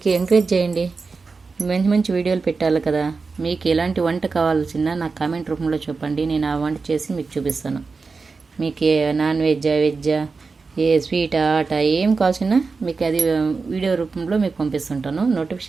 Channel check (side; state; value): left; quieter; 4.4 dB